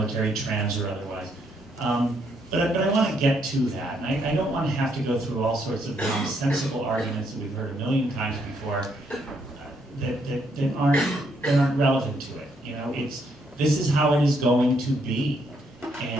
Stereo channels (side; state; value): both; normal; correlation 0.73